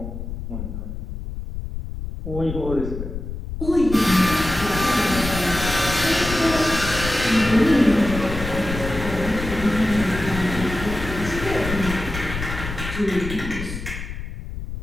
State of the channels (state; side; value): noise; left; rumble, 7 dB below the sound